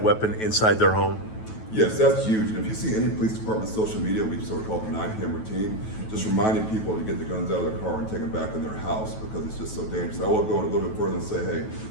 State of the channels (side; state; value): right; late; 9.2 ms